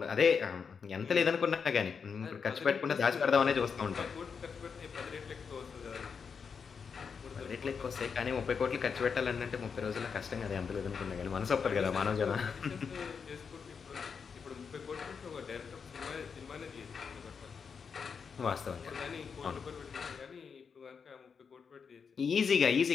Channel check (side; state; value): right; quieter; 6.1 dB